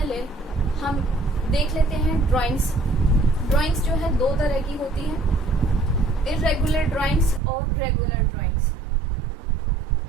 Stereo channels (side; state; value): left; drops out; at 7.4 s